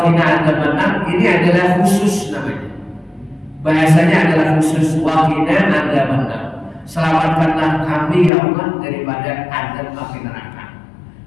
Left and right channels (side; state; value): right; drops out; at 8.3 s